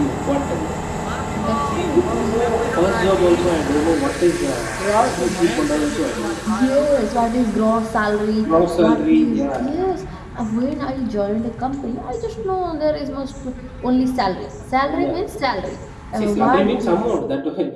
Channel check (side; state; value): both; identical; correlation 1.00